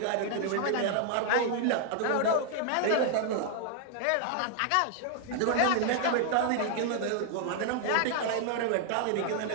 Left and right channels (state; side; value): different; both; correlation 0.00